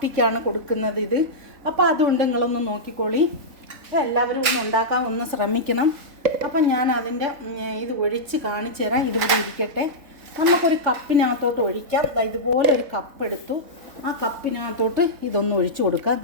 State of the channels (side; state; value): left; late; 3.7 ms